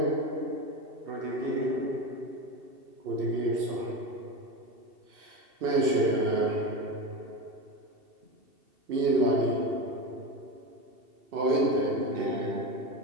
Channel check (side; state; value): left; late; 2.7 ms